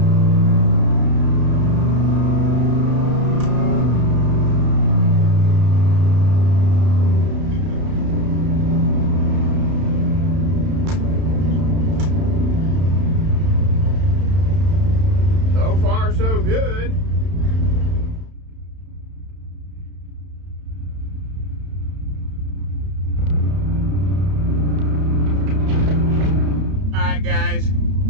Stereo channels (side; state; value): left; late; 31 ms